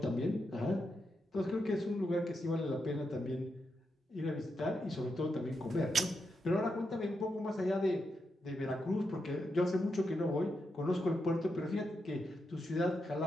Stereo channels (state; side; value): normal; both; correlation 0.85